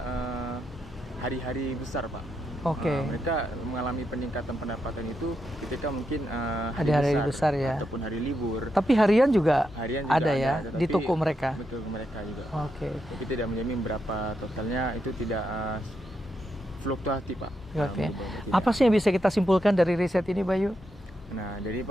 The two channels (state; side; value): normal; both; correlation 0.84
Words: hari-hari besar Pak. Mereka mengalami peningkatan pendapatan itu ketika mungkin hari besar ya, ataupun hari libur. Tapi harian juga ada ya di toko mereka. Betul, mereka juga. Tapi tidak menjamin berapa totalnya, itu tidak fluktuatif Pak. Apa sih yang bisa kita simpulkan dari riset ini Bayu? Nah, jadi